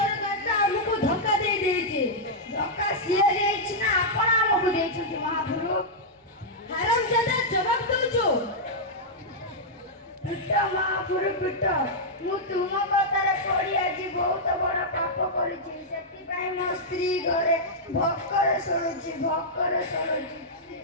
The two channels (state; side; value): normal; both; correlation -0.07